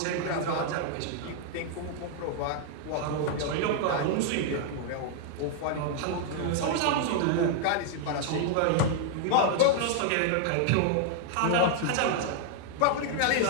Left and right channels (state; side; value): different; both; correlation 0.00